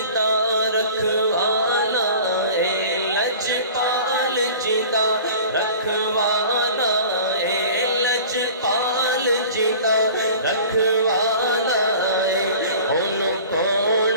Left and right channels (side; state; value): both; inverted; correlation -0.42